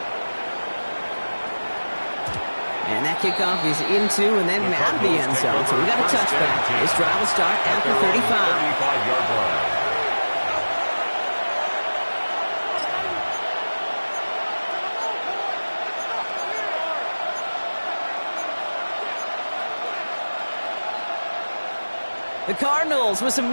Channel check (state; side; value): inverted; both; correlation -1.00